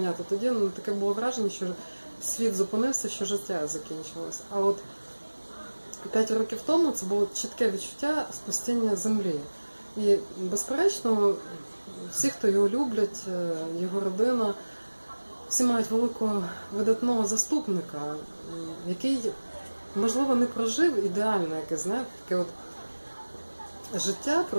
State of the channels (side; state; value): both; inverted; correlation -1.00